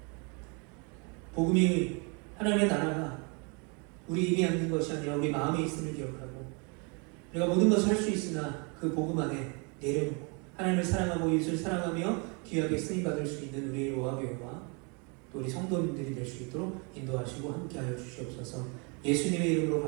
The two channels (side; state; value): left; quieter; 33.2 dB